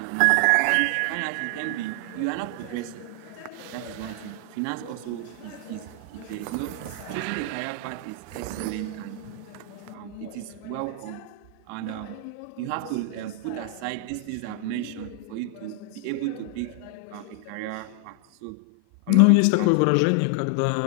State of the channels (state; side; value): different; both; correlation 0.00